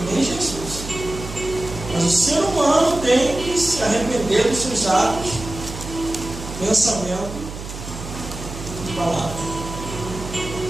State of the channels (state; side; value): noise; right; hum, 10 dB below the sound